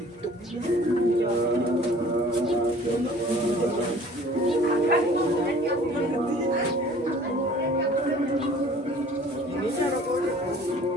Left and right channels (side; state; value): both; normal; correlation 0.50